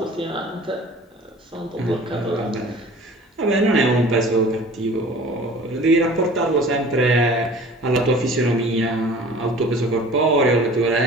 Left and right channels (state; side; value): normal; both; correlation 0.45